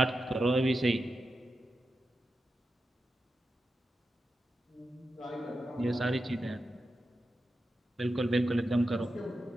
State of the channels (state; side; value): normal; both; correlation 0.90